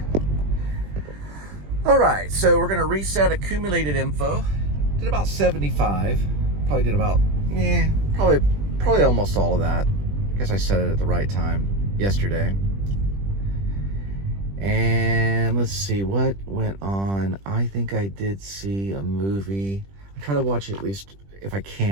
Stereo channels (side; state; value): left; late; 20 ms